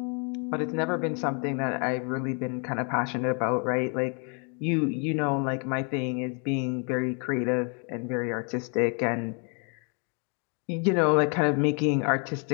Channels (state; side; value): quieter; right; 37.9 dB